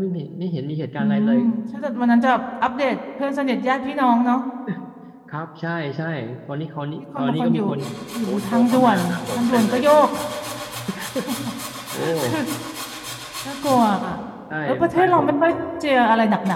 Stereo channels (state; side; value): identical; both; correlation 1.00